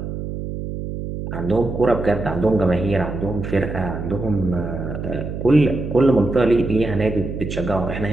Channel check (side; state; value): right; noise; hum, 6 dB below the sound